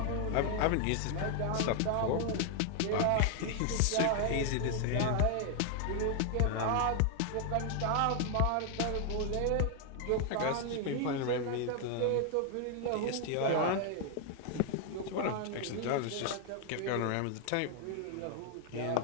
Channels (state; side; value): different; both; correlation 0.00